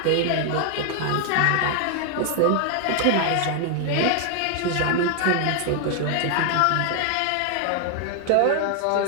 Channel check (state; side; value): different; both; correlation 0.00